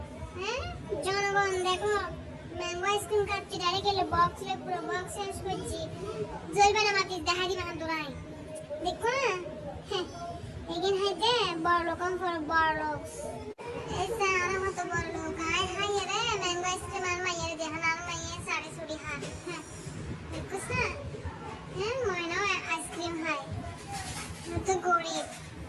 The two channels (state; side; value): identical; both; correlation 1.00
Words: হ্যাঁ জনগণ দেখো ম্যাঙ্গো আইসক্রিম খাচ্ছি ডাইরেক্ট এলে বক্স লে পুরো বক্স শেষ করছি জ্বলবে না মাটি দেখা দিবা না তোরাই দেখো না হ্যাঁ এগিন হাইতে বড় লোকম ফর বড় লোক এই স্যার আমার মতো বড় লোক হাই হাই রে ম্যাঙ্গো আইসক্রিম আর মাইয়ের দেখান আর মাইয়ের সাড়ে ছুটি হাত হ্যাঁ দেখো স্যার হ্যাঁ ময়নাও আইসক্রিম খাই তো গরিব